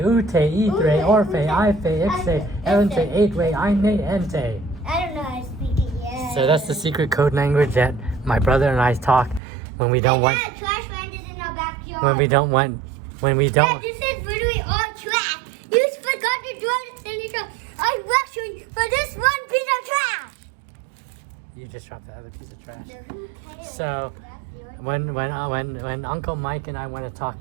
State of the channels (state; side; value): drops out; left; at 9.4 s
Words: ute, itre, Ute, orfe, ute, ife, ixe, ife, elente, ife. eightwe, eine, ente. I don't know how to speak it yet. So that's the secret code language that my brother and I talk when we don't want, Dad, trash landed in our backyard. when we don't want, when we Dad, don't. this is literally all trash. You just forgot to do it in the I'm rushing for this one piece of trash. You just dropped the other piece of trash. So who cares? So when Uncle Mike and I want to